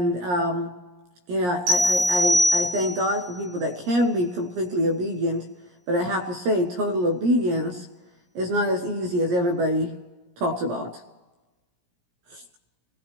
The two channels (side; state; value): left; late; 17 ms